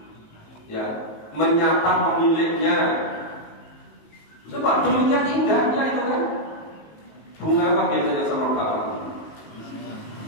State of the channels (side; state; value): right; late; 19 ms